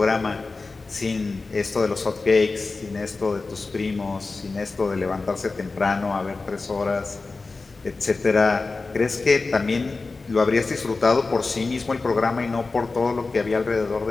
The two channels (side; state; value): right; quieter; 3.8 dB